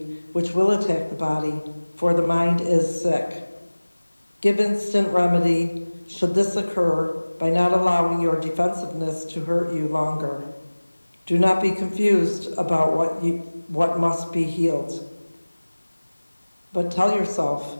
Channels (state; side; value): inverted; both; correlation -1.00